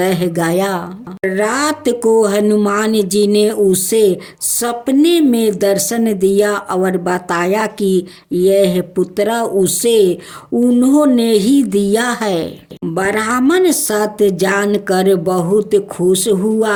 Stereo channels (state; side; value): identical; both; correlation 1.00